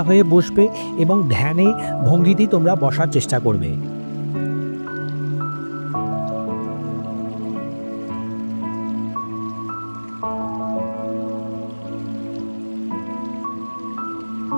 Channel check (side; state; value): both; inverted; correlation -1.00